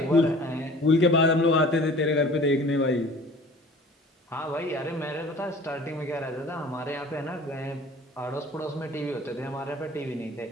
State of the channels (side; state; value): both; normal; correlation 0.46